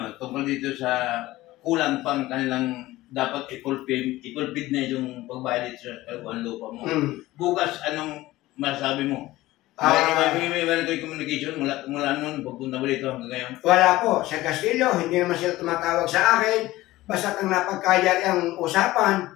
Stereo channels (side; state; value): right; quieter; 17.4 dB